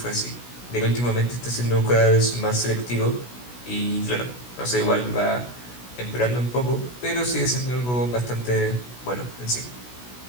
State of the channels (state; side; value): late; right; 16 ms